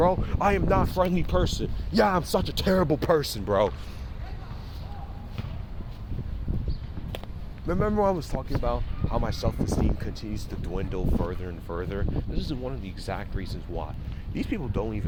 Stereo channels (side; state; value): both; identical; correlation 1.00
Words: I am not a friendly person. Yeah, I'm such a terrible person, bro. Remember I was talking about how my self-esteem continues to dwindle further and further? This is one of the exact reasons why. These people don't